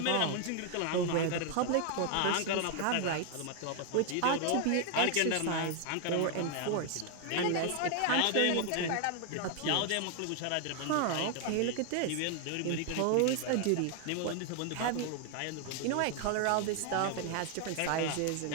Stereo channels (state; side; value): different; both; correlation 0.00